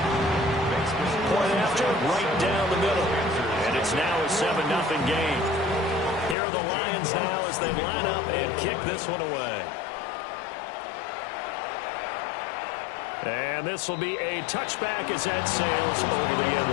Point after, right down the middle. And it's now a 7-0 game. Here are the Lions now as they line up and kick this one away. And this will be a touchback as that sails over the end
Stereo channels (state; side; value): drops out; right; at 6.4 s